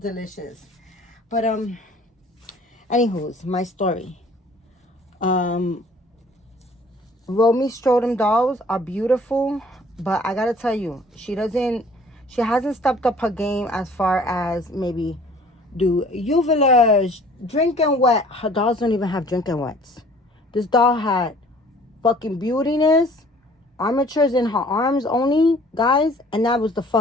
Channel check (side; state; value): both; normal; correlation 0.53